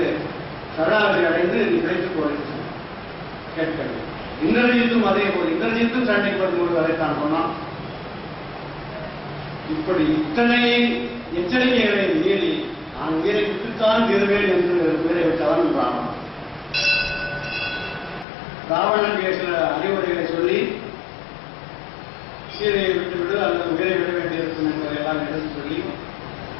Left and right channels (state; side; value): drops out; right; at 18.2 s